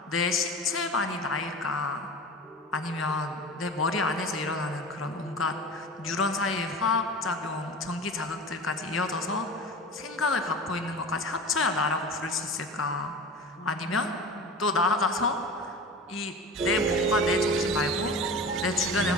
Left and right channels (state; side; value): normal; both; correlation 0.33